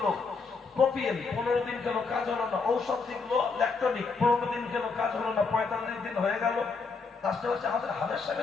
প্রোপিয়েন, 15 দিন খেলো, কাজ হলো না। ঔষধ দিল ল্যাকটোনিক, 15 দিন খেলো, কাজ হলো না। 45 দিন হয়ে গেল। লাস্টে হচ্ছে আমাদের হাজার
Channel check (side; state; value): right; quieter; 4.6 dB